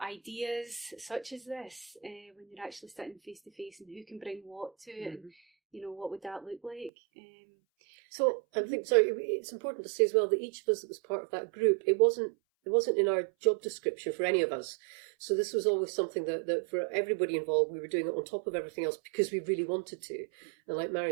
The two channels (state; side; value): drops out; left; at 6.9 s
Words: ideas such as this when you're actually sitting face to face, and who can bring what to it, and what would that look like? So I think it's important to say as well that each of us that was part of that group, it wasn't in our job description for any of us. So this was always something that for everybody involved, we were doing it on top of everything else because we really wanted to. And like Mhairi